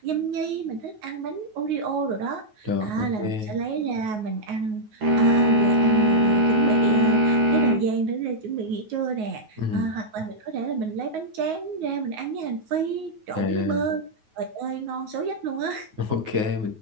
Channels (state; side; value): late; left; 9.4 ms